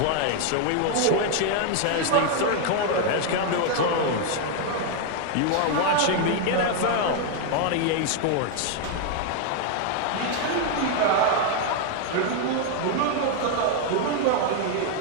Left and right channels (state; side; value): different; both; correlation 0.00